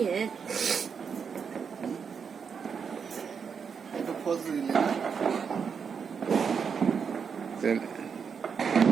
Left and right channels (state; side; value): quieter; left; 6.4 dB